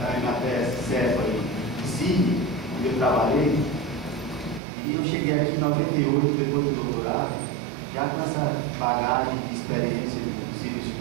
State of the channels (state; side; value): drops out; left; at 4.6 s